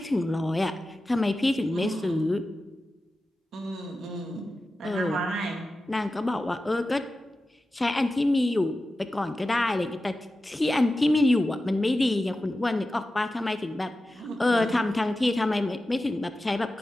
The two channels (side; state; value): both; normal; correlation 0.93